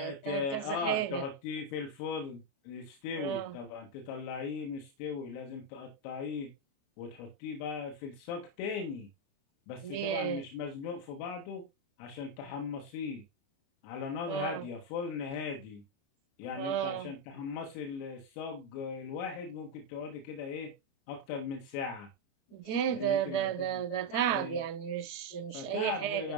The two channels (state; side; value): late; right; 29 ms